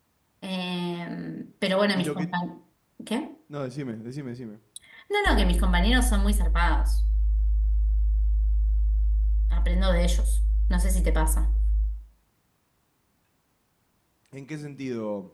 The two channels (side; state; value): both; identical; correlation 1.00